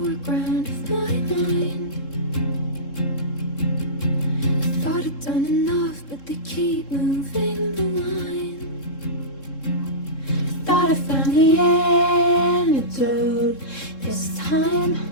of my mind. I thought I'd done enough, but they keep moving the line. Thought I found the antidote this time.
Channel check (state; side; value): late; right; 3.7 ms